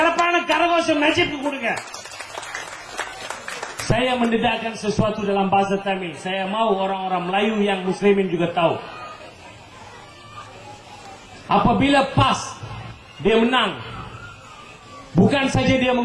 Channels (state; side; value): identical; both; correlation 1.00